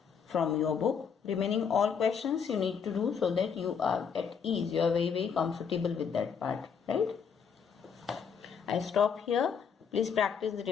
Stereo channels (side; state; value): right; quieter; 6.7 dB